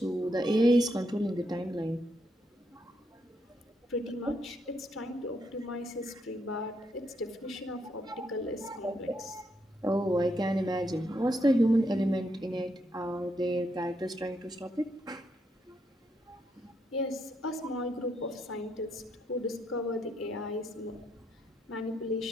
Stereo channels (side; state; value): both; normal; correlation 0.78